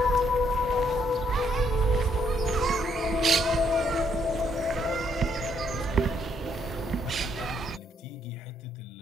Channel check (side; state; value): both; normal; correlation 0.71